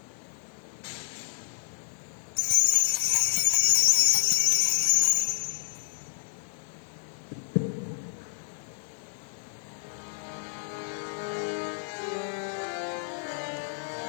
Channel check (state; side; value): silent; right; 58 dB below the other